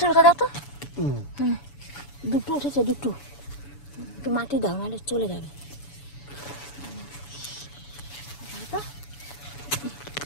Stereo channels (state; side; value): late; right; 7.0 ms